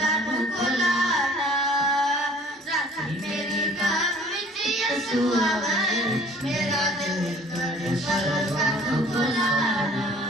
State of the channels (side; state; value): both; normal; correlation 0.52